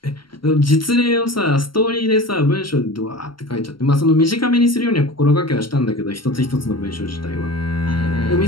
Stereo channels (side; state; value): right; late; 0.73 ms